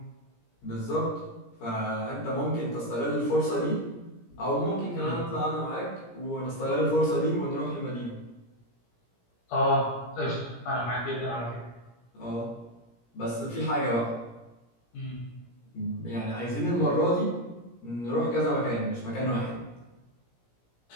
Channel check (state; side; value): late; right; 17 ms